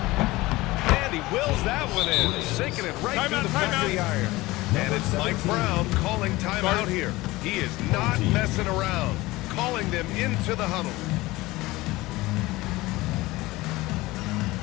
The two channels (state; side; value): quieter; right; 19.8 dB